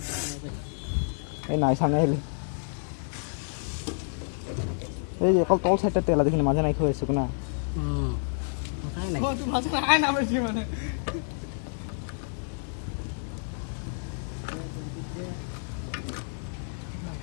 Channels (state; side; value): silent; right; digital silence